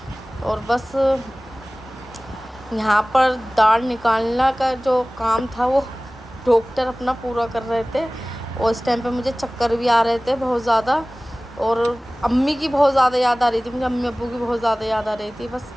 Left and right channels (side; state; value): both; normal; correlation 0.98